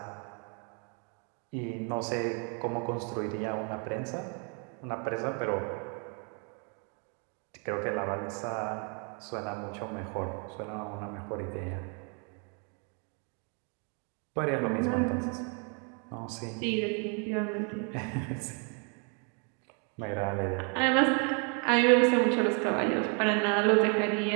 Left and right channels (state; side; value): quieter; left; 37.5 dB